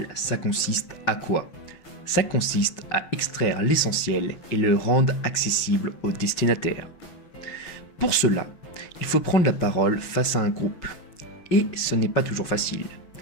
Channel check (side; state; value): right; late; 5.4 ms